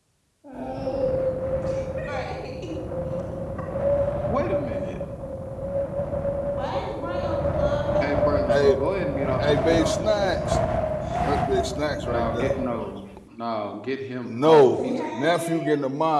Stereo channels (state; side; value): identical; both; correlation 1.00